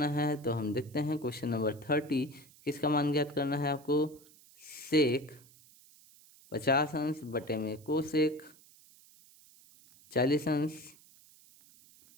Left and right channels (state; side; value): noise; right; hiss, 25 dB below the sound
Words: है। तो हम देखते हैं क्वेश्चन नंबर 30, किसका मान ज्ञात करना है आपको, सेक 50 अंश बटे में कोसेक 40 अंश